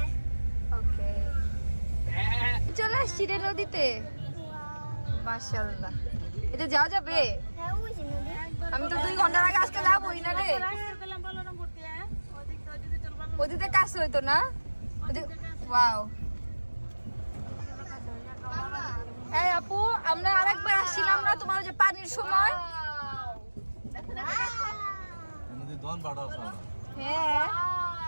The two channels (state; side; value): inverted; both; correlation -1.00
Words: ওকে চলে আসছি রে নদীতে মাশাআল্লাহ এটা যাওয়া যাবে আমি তো 2 ঘন্টার আগে আসতে যাবোই না রে ওদিকে কাছে হইতো না ওয়াও এই আপু আমরা আরেকবার আসছিলাম না তোমার যে পানির সময় হ্যাঁ